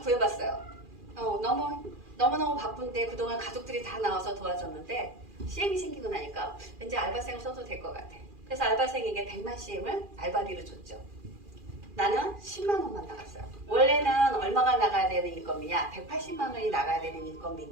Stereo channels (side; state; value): left; late; 2.4 ms